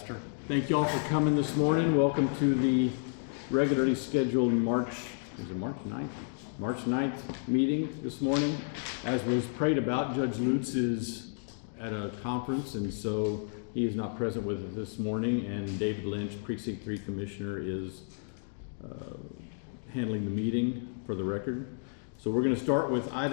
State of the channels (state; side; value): silent; right; digital silence